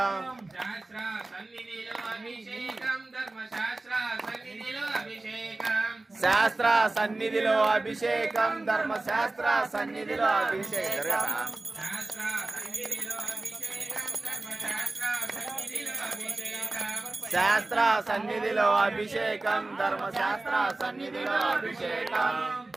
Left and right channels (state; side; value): quieter; left; 3.0 dB